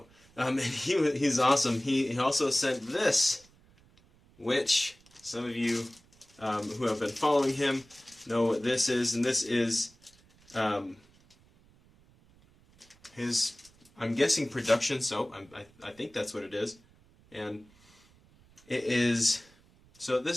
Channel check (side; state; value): right; noise; rumble, 29 dB below the sound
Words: And he's awesome. He also sent this, which some of you who have been following him know what this is, and this is his, I'm guessing, production soap. I think that's what it is, and it is. So